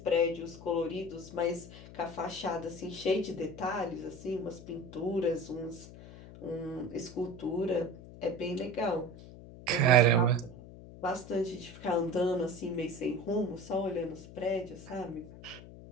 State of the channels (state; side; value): noise; left; hum, 16 dB below the sound